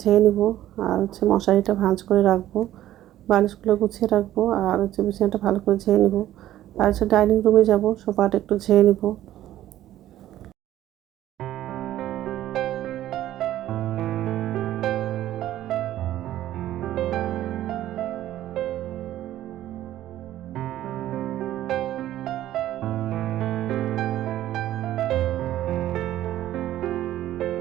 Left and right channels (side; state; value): left; quieter; 13.3 dB